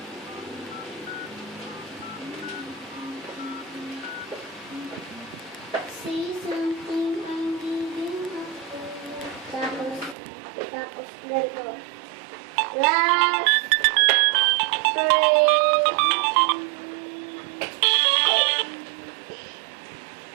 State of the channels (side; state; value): left; drops out; at 10.2 s